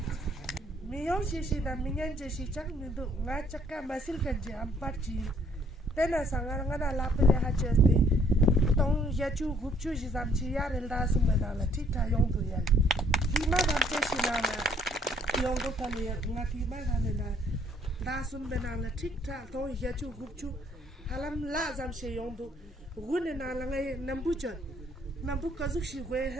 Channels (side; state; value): both; normal; correlation 0.64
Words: Miyong sisi dan minyan jesi cak mindu ngacak ka masil kerja empat ji. Tena sangar ngana lapele hajesti. Tong yacu gupcu jizam ciyar elda semenala tita yong tu yal. Tima damce sinala yong tu kali ngati mana na dasum benala tita tong yacu gupcu halam la zam se yong tu gune na langai nambujan nambu kazuk shi gwe